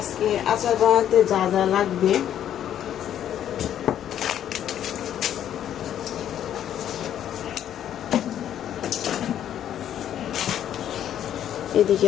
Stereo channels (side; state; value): right; quieter; 10.5 dB